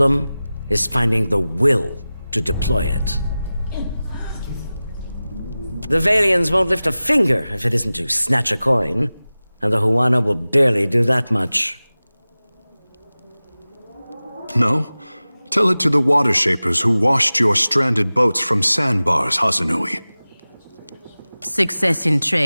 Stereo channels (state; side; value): inverted; both; correlation -0.97